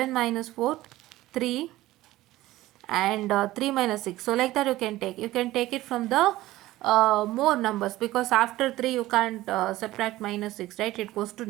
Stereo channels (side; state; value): left; quieter; 16.7 dB